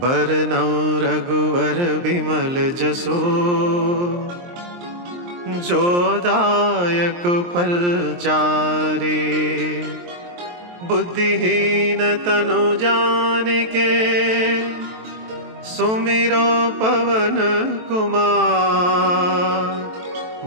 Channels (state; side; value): late; left; 23 ms